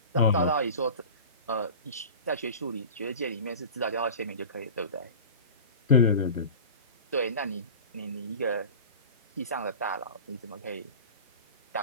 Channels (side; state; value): both; inverted; correlation -0.35